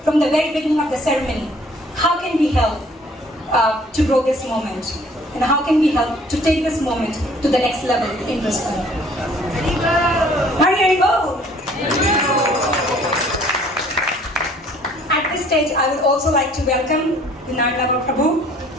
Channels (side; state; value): both; normal; correlation 0.57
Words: from the very beginning of the ceremony, how can we help to grow this moment? And how can we help to take this moment to the next level in Brisbane? Hari Bo! At this stage, I would also like to welcome Lunar Prabhu,